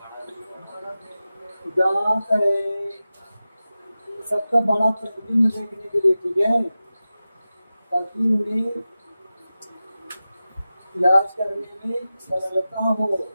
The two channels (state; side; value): inverted; both; correlation -0.94